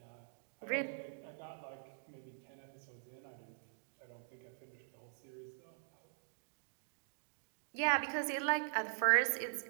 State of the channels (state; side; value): silent; left; digital silence